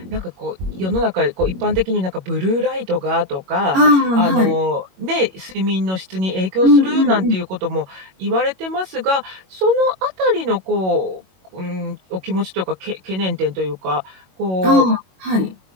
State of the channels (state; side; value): late; left; 21 ms